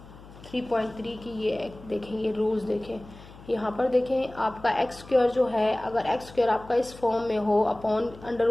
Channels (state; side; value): noise; left; hum, 19 dB below the sound